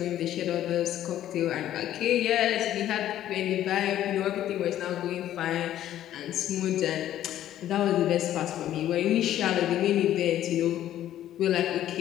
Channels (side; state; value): right; quieter; 12.2 dB